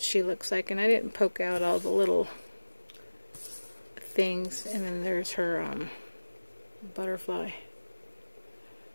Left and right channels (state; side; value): inverted; both; correlation -1.00